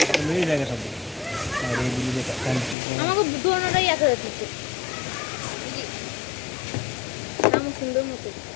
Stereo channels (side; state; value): right; drops out; at 2.8 s